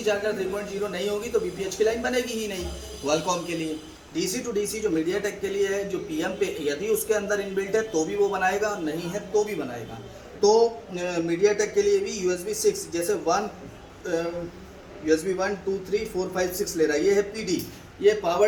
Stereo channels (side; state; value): both; identical; correlation 1.00